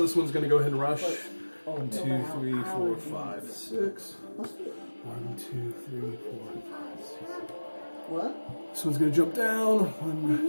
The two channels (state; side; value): inverted; both; correlation -1.00